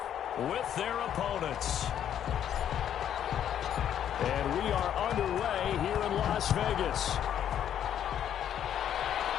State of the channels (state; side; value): quieter; right; 9.9 dB